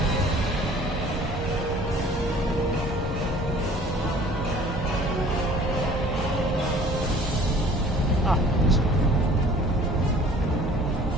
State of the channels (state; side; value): normal; both; correlation 0.50